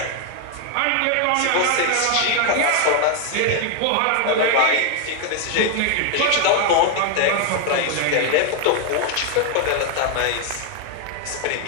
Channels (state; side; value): different; both; correlation 0.01